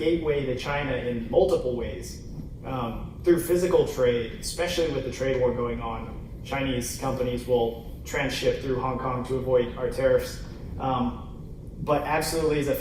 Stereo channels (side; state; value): both; identical; correlation 1.00